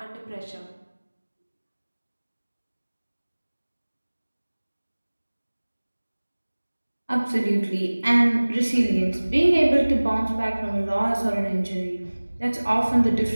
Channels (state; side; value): inverted; both; correlation -1.00